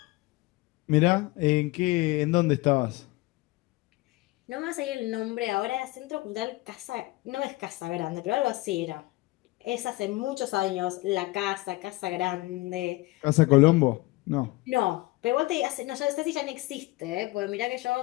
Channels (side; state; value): right; quieter; 20.9 dB